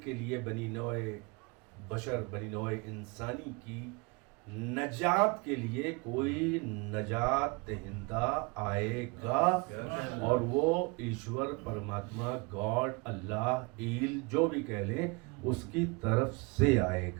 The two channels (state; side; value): quieter; left; 28.2 dB